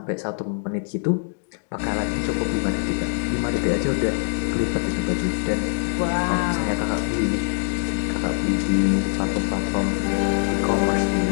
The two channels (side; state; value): right; silent; digital silence